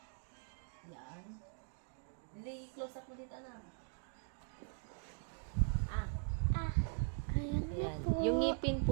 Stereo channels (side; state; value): left; silent; 50 dB below the other